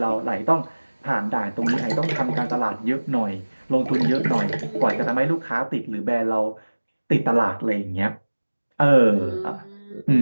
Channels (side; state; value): both; inverted; correlation -1.00